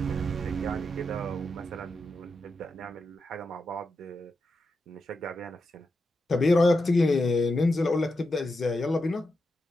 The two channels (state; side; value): normal; both; correlation 0.87